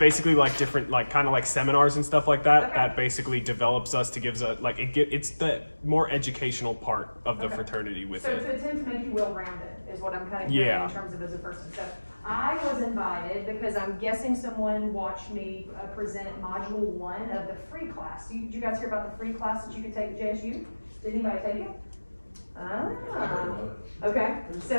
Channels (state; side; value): inverted; both; correlation -1.00